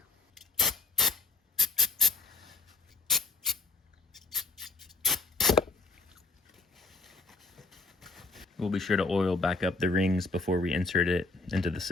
We'll be sure to oil back up the rings before we insert it into the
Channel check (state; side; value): quieter; right; 3.6 dB